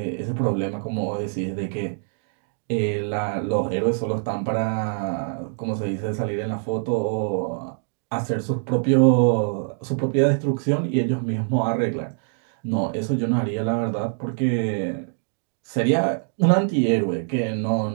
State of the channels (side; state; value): left; silent; 62 dB below the other